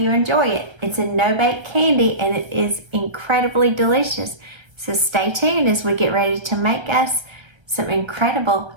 enjoy it. It's a no-bake candy and it is incredibly delicious, so stay tuned as we get ready to make us some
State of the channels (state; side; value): late; left; 1.3 ms